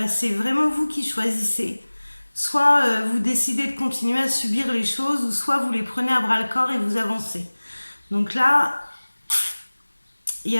c'est vraiment vous qui choisissez. Soit vous décidez de continuer à subir les choses, ou soit vous les prenez à bras le corps et vous avancez. Donc là, il y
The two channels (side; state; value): both; inverted; correlation -1.00